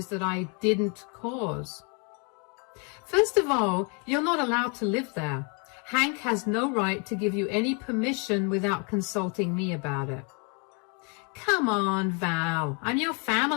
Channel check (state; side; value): quieter; right; 35.4 dB